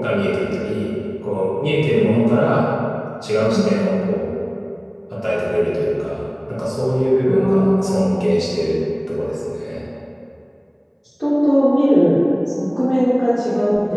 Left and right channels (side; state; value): both; identical; correlation 1.00